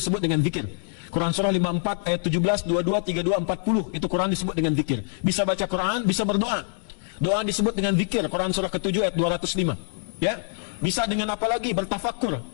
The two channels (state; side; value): silent; right; 62 dB below the other